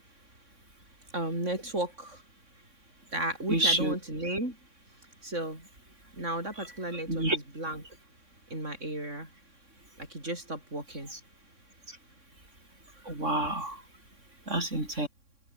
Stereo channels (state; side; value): late; left; 3.6 ms